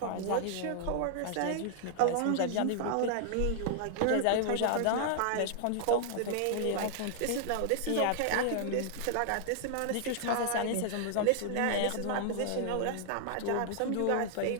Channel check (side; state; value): both; different; correlation 0.00